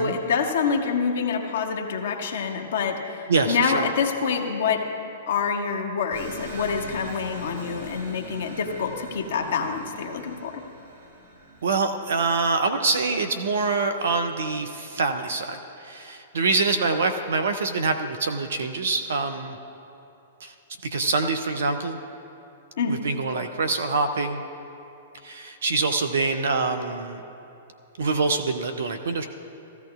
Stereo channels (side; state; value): both; inverted; correlation -0.50